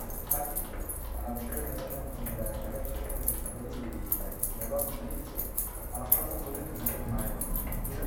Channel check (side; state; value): both; identical; correlation 1.00